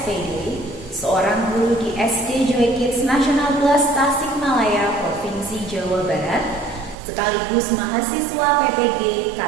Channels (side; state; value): left; drops out; at 7.0 s